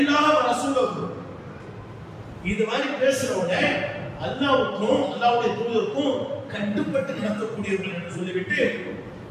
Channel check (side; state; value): both; identical; correlation 1.00